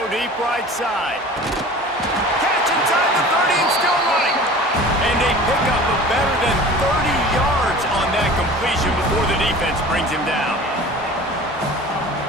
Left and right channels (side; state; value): both; normal; correlation 0.41